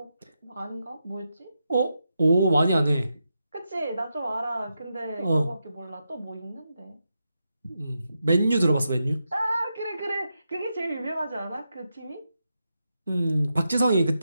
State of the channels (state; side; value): inverted; both; correlation -0.86